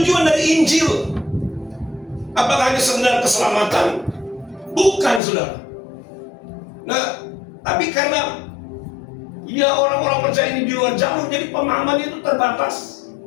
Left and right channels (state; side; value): drops out; right; at 5.2 s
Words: dari Injil? Apakah hanya sekedar keselamatan? Bukan, saudara. Nah, tapi karena ya orang-orang percaya ini di luar jalur, jadi pemahamannya itu terbatas.